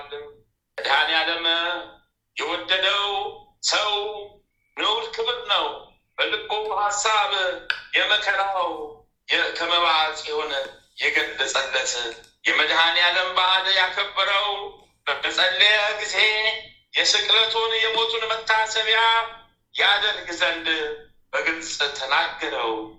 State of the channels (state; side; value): identical; both; correlation 1.00